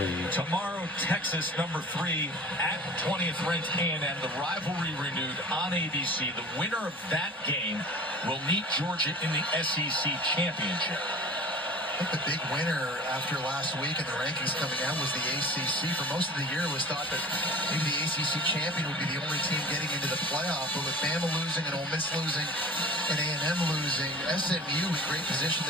Tomorrow, Texas, number 3 at 20th ranked A&M. The rivalry renewed on ABC. The winner of that game will meet Georgia in the SEC championship. I think the big winner after last week and the rankings coming out was the ACC. For most of the year, it was thought that maybe the ACC champion would be the only team getting into the playoff. But with Bama losing and Ole Miss losing and A&M losing, SMU in great position.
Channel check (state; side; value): normal; both; correlation 0.41